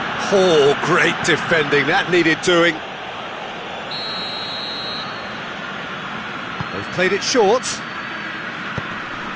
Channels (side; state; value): both; identical; correlation 1.00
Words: Oh, great defending. That needed doing. They've played it short.